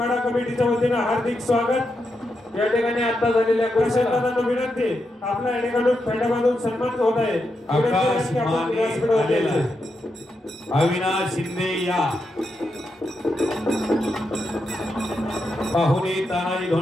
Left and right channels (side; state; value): both; normal; correlation 0.85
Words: कमिटीच्या वतीनं हार्दिक स्वागत। या ठिकाणी आता झालेल्या प्रशांतदादांना विनंती आपल्या या ठिकाणी फेटा बांधून सन्मान होत आहे। आकाश माने अविनाश शिंदे या पाहुणे तानाजी